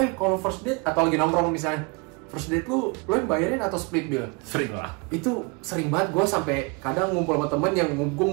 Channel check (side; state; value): left; quieter; 30.2 dB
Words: kalau first date atau lagi nongkrong misalnya, first date lu yang bayarin atau split bill? Sering lah. Itu sering banget, gue sampai kadang ngumpul sama temen